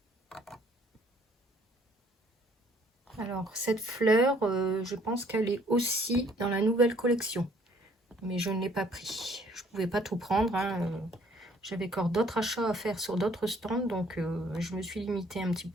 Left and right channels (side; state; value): both; normal; correlation 0.61